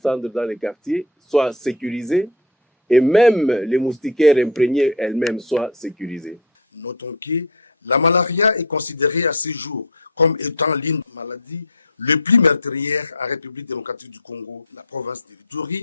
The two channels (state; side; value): normal; both; correlation 0.17